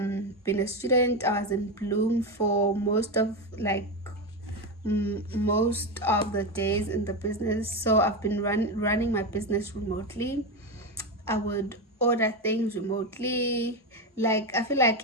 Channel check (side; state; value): both; normal; correlation 0.14